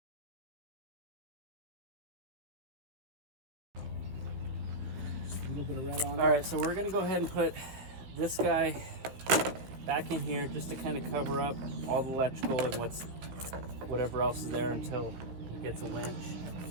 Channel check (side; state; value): left; late; 15 ms